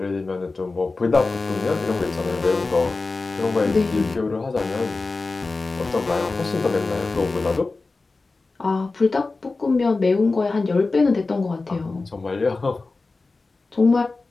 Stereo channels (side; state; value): right; quieter; 3.7 dB